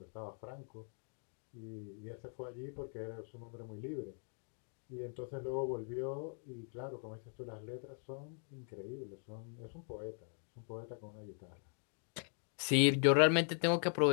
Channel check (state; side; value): silent; right; 51 dB below the other